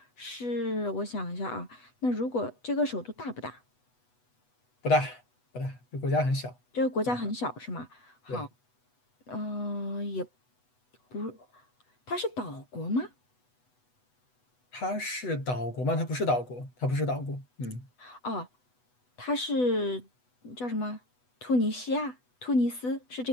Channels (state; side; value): late; right; 8.1 ms